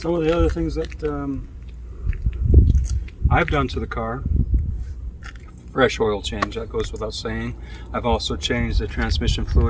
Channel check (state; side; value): identical; both; correlation 1.00